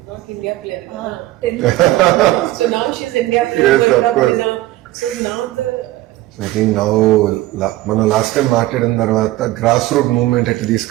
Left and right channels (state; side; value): quieter; left; 16.7 dB